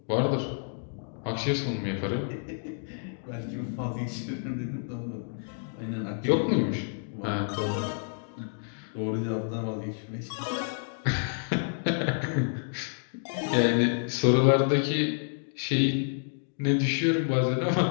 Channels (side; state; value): right; silent; digital silence